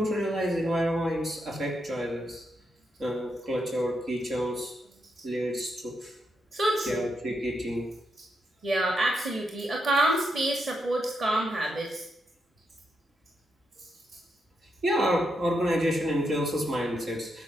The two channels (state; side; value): normal; both; correlation 0.82